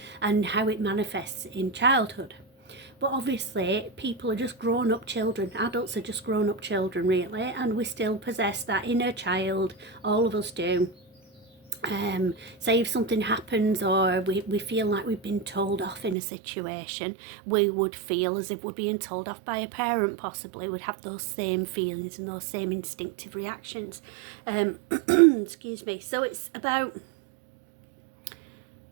and how it manifests in childhood. But obviously people are just grown up children, adults are just grown up children really, and we still possess that inner child, all of us do. Say if something happens or we feel like we've been told off in a situation, we would feel as if we're being told off by a parent, possibly would have those same feelings and those same instinctive reactions. Excuse me. So it's about,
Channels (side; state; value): left; drops out; at 16.2 s